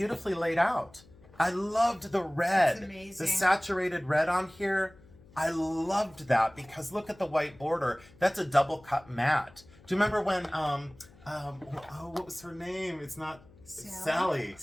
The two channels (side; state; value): left; noise; hum, 25 dB below the sound